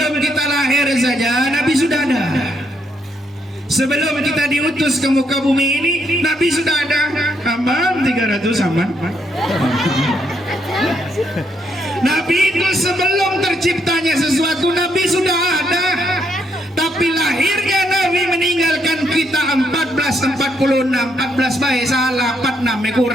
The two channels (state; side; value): normal; both; correlation 0.75